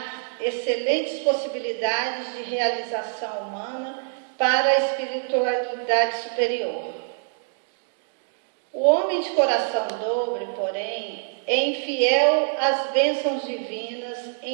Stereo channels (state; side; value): silent; left; digital silence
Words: excelentes possibilidades de realização humana para a espiritualidade superior. O homem de coração dobre, porém, é infiel às bênçãos divinas